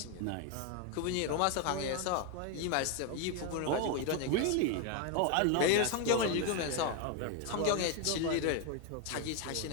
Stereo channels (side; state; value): both; different; correlation 0.01